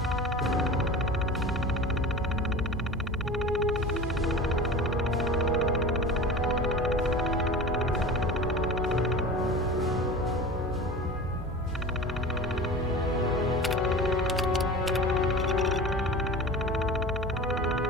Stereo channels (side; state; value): both; normal; correlation 0.34